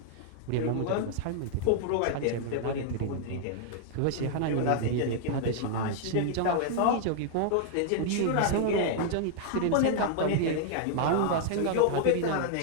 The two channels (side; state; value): both; different; correlation 0.00